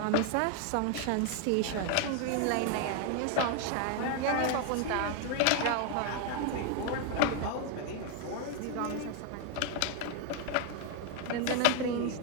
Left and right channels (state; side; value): different; both; correlation 0.01